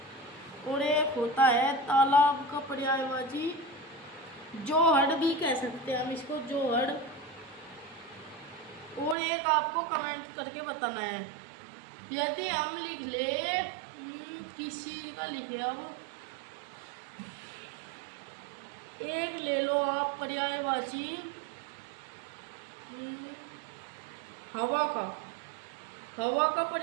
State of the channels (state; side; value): drops out; left; at 9.2 s